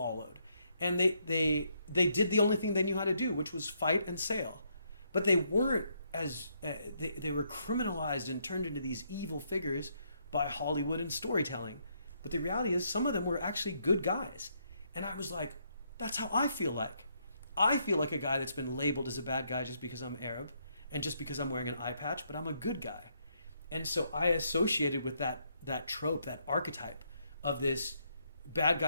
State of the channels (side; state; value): both; inverted; correlation -0.75